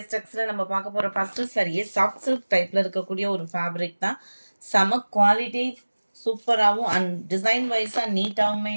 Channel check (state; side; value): inverted; both; correlation -1.00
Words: டெக்ஸில் நம்ம பார்க்க போகிற ஃபஸ்ட்டு சரியே சாஃப்ட் சில்க் டைப்பில் இருக்கக்கூடிய ஒரு ஃபேப்ரிக் தான். செம குவாலிட்டி, சூப்பராகவும் அண்ட் டிசைன் வைஸாக நீட்டாகவுமே